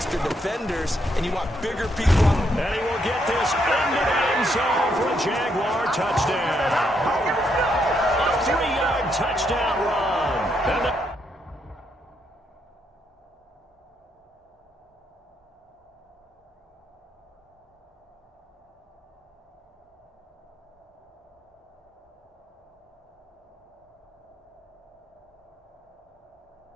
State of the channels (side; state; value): both; normal; correlation 0.76